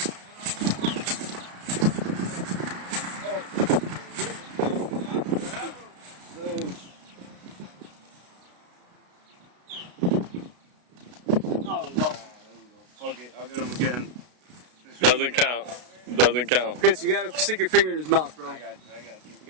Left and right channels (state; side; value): late; left; 33 ms